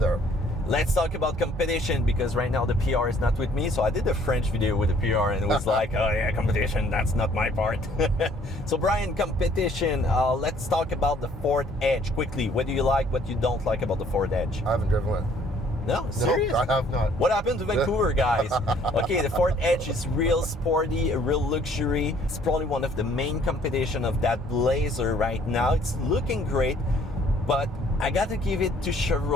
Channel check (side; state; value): both; normal; correlation 0.60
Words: Let's talk about competition, because right now the PR is not with me. So I did a French video with the PR and it was like, oh yeah, competition, that's not my part. So Brian, competition, let's talk about the Ford Edge quickly. What do you like, what you don't like about the Ford Edge? I haven't driven one. No, serious? No, I have not. What happened to Vancouver, guys? Okay, the Ford Edge is real sporty, a real luxury. It's probably one of the main competition of that Blazer right now. It's looking great, but I gotta give it to